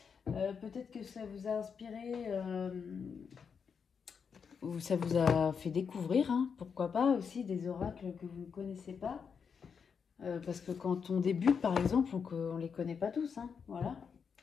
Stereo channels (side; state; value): right; quieter; 6.3 dB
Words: Peut-être que ça vous a inspiré ou ça vous a fait découvrir, hein, pourquoi pas, aussi des oracles que vous ne connaissez pas. Parce que quand on débute, par exemple, on ne les connaît pas tous. Hein, voilà.